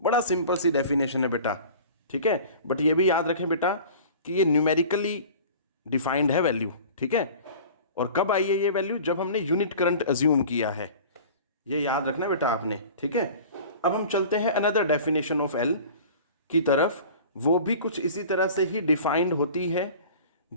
सिंपल सी डेफिनेशन है बेटा। ठीक है, बट ये भी याद रखें बेटा कि ये न्यूमेरिकली डिफाइंड है वैल्यू। ठीक है, और कब आई है ये वैल्यू, जब हमने यूनिट करंट अज्यूम किया है, ये याद रखना बेटा आपने। ठीक है, अब हम चलते हैं अनदर डेफिनेशन ऑफ एल की तरफ, वो भी कुछ इसी तरह से ही डिफाइंड होती है।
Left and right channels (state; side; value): inverted; both; correlation -0.41